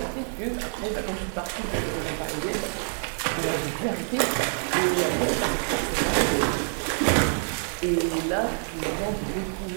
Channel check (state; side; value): silent; left; 60 dB below the other